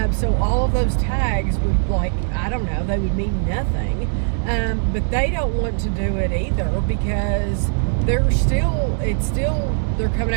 So all of those tags would, like, I don't know, they would mean nothing. But they don't want to do it either because they're coming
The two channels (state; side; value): silent; left; digital silence